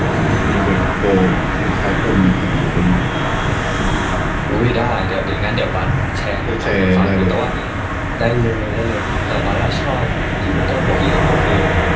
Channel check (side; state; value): both; identical; correlation 1.00